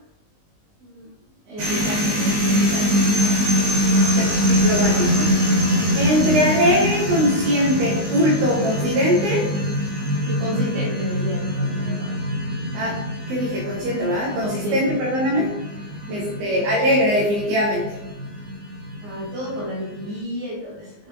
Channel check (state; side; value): late; left; 19 ms